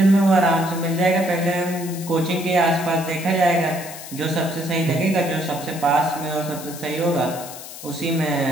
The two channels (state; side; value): noise; left; hiss, 13 dB below the sound